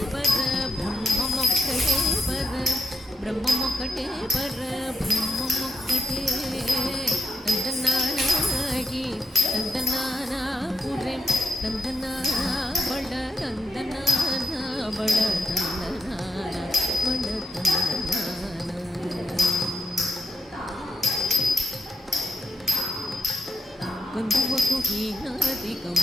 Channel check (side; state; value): both; normal; correlation 0.84